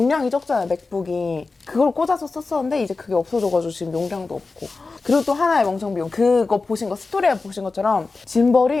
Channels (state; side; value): quieter; right; 3.9 dB